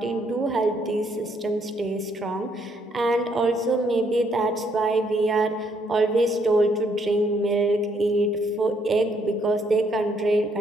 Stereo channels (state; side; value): normal; both; correlation 0.70